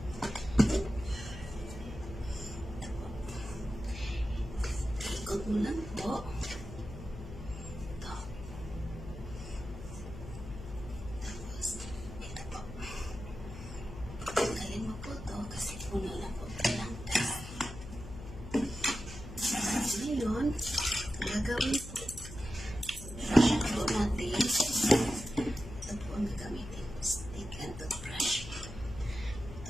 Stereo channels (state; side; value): noise; left; hum, 11 dB below the sound